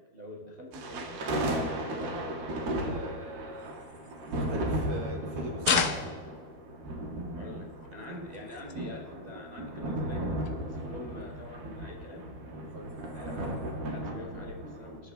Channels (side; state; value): left; late; 12 ms